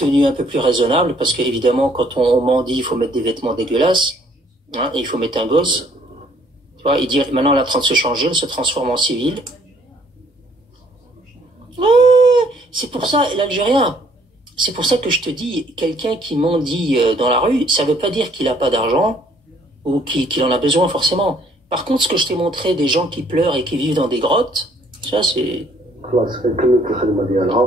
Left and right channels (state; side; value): normal; both; correlation 0.63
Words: un peu plus raisonnable parce qu'évidemment quand on mendie il faut mettre des vêtements dégueulasses, hein, et il faut mettre un gosse. Tu vois, il dit maintenant elle est en train de se changer, elle se transforme en civile. C'est pour ça l'Algérien. C'est pour ça que je te dis, quelqu'un qui mendie dans la rue, ça veut pas dire qu'il a pas d'argent ou qu'il en a besoin forcément. Par contre, ce que je t'ai montré, des gens qui pleurent et qui vivent dans des grottes, ça c'est...